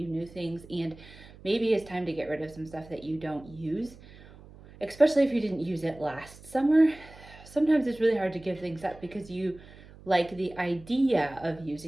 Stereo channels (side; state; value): right; noise; hum, 20 dB below the sound